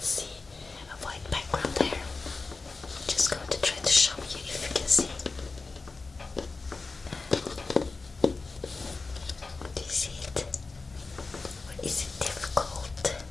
see, a white background there. Just going to try to show you if you can see. Do you see it? Or is it difficult?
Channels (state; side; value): quieter; right; 3.9 dB